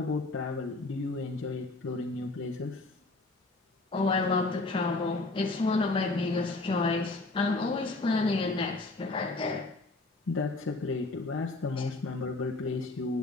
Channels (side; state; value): right; quieter; 3.2 dB